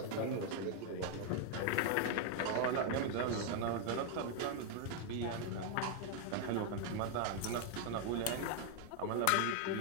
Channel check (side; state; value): both; different; correlation 0.00